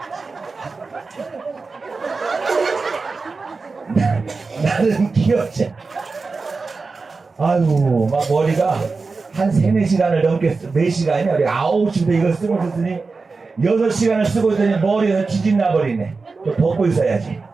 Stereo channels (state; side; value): quieter; left; 4.2 dB